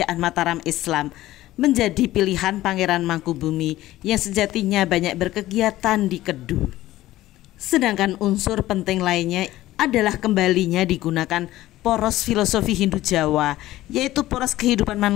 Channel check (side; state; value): right; quieter; 15.7 dB